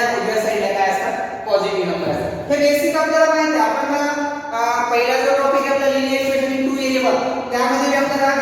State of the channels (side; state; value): both; identical; correlation 1.00